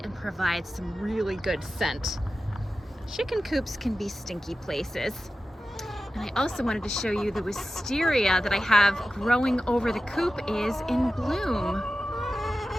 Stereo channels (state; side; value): normal; both; correlation 0.94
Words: and provide some really good scent. Chicken coops can be stinky places. And I also wanted to show you the wisteria that I have growing over the coop is in bloom.